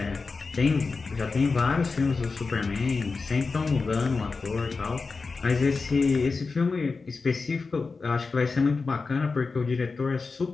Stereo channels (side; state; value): right; quieter; 4.3 dB